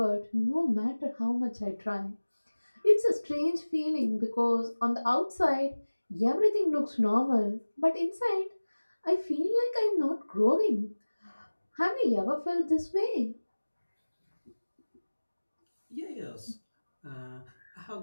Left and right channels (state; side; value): inverted; both; correlation -1.00